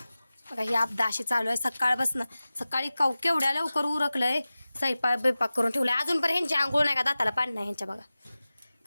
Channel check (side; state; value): both; inverted; correlation -0.97